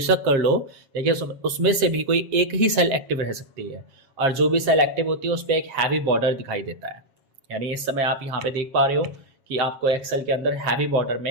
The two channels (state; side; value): late; left; 7.4 ms